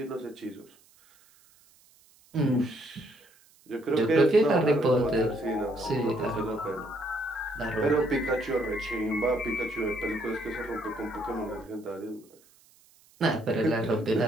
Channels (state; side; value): noise; right; hiss, 29 dB below the sound